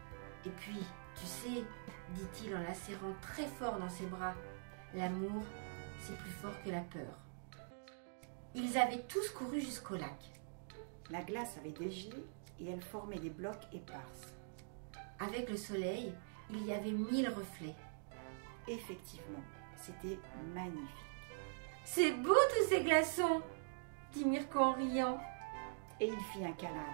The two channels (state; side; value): silent; left; digital silence